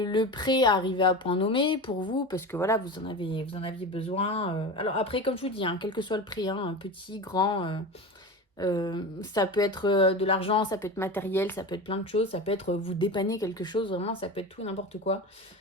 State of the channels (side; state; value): both; normal; correlation 0.27